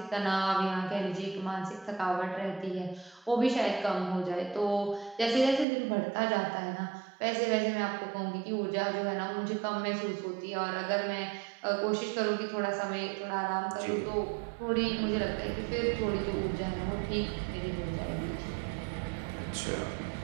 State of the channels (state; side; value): drops out; left; at 5.7 s